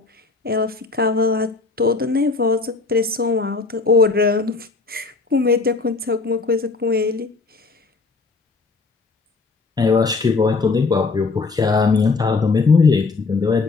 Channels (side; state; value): right; quieter; 4.1 dB